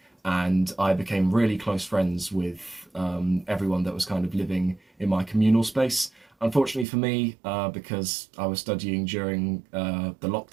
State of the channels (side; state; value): left; drops out; at 6.9 s